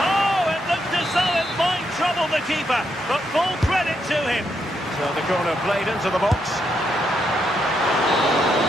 it looked as though it might trouble the keeper, but full credit to him. So the corner played into the box.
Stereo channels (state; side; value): normal; both; correlation 0.79